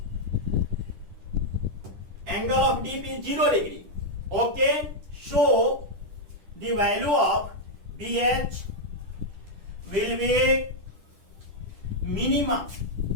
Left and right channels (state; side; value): late; left; 10 ms